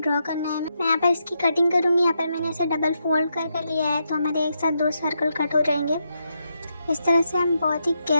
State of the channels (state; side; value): inverted; both; correlation -0.82